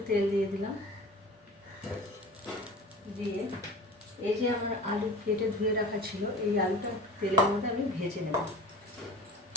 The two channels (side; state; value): both; normal; correlation 0.37